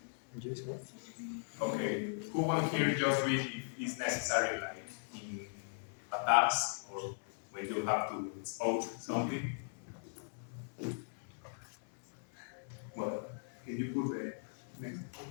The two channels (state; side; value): silent; right; digital silence